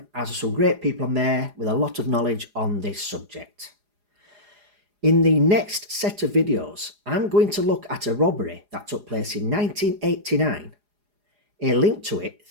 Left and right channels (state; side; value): late; left; 4.9 ms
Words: as there are some great people on there with a lot of knowledge on this subject. In the next set of videos, I'm going to look at a robbery that took place in 1989, a link to it